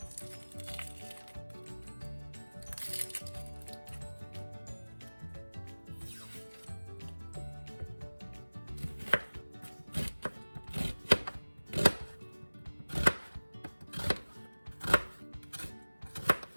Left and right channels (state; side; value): inverted; both; correlation -1.00